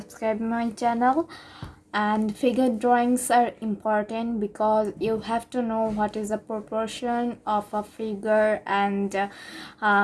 my channel. And figure drawings are important because you have to know what is the proportion of a figure, and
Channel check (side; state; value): both; identical; correlation 1.00